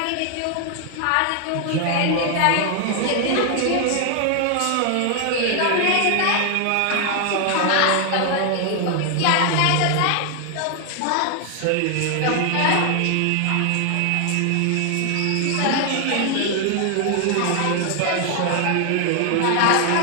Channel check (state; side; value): different; both; correlation 0.00